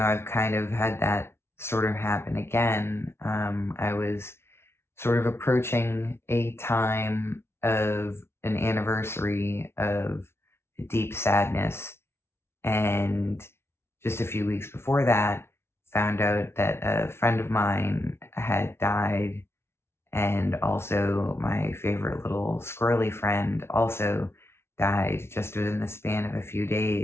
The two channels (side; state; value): right; late; 0.12 ms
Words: kind of had that sort of happen again. I was sort of approaching a time of an anniversary of deep sadness. And just a few weeks before that, found out that a friend of mine had died. And also my favorite little squirrely friend also died just within the span of a few